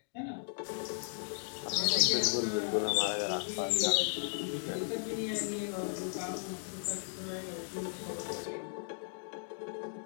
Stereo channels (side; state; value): right; silent; digital silence